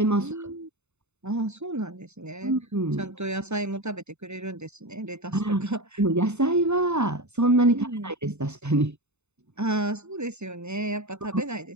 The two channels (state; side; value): late; left; 0.82 ms